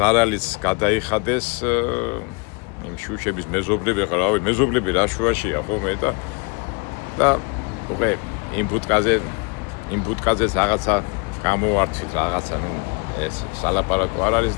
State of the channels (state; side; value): quieter; right; 31.8 dB